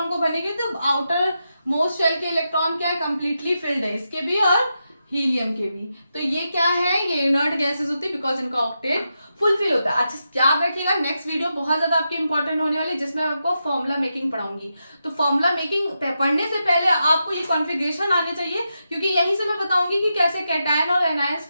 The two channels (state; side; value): inverted; both; correlation -0.87